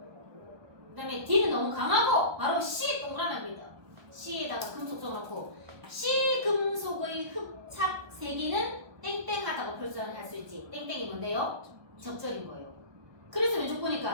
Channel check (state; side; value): late; left; 1.2 ms